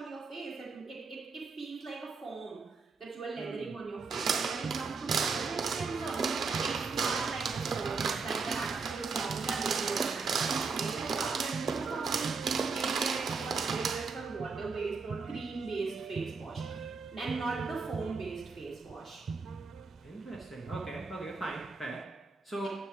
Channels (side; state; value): left; quieter; 4.7 dB